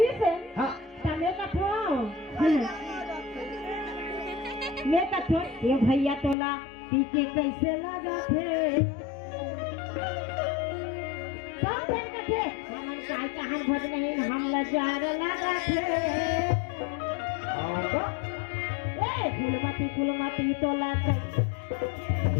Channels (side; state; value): right; drops out; at 6.4 s